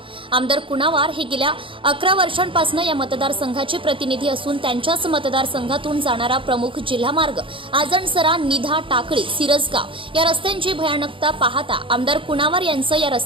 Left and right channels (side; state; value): left; late; 0.25 ms